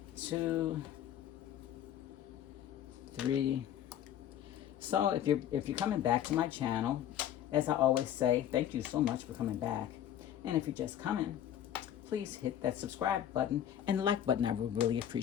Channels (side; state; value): right; quieter; 10.7 dB